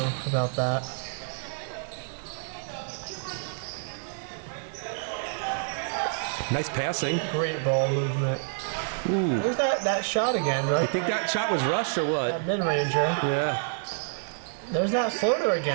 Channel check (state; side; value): silent; left; digital silence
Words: about that. Nice passing. Great ball movement. Ooh. There's that shot again, right? You think that shot was rushed or what? That mid-ranger. Yeah. There's that floater